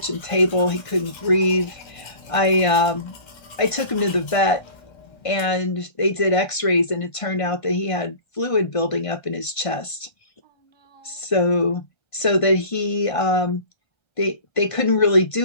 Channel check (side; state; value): right; late; 1.5 ms